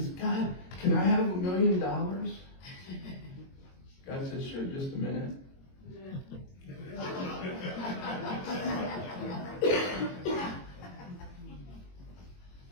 "God, can I have $1 million?" God says, "Sure, just a minute."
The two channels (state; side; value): late; right; 22 ms